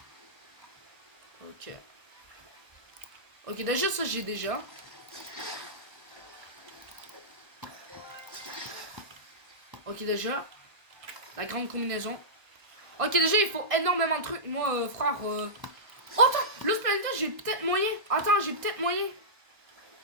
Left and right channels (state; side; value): late; left; 1.6 ms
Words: Ok. Ok, déjà ça j'ai déjà. Ok déjà. La grande combinaison. Ok déjà il faut énormément de trucs. Moi frère. Oh attends, Los Planetas j'ai peut-être moyen. Attends, j'ai peut-être moyen.